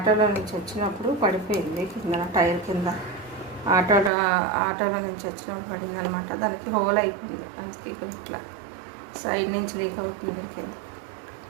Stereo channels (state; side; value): drops out; left; at 4.1 s